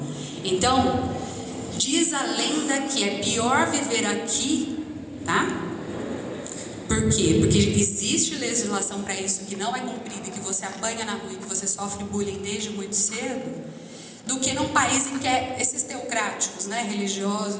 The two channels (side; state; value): both; identical; correlation 1.00